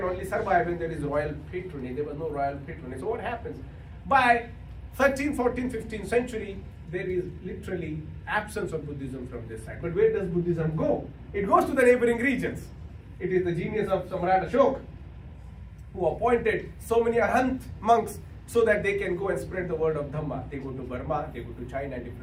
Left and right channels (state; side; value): identical; both; correlation 1.00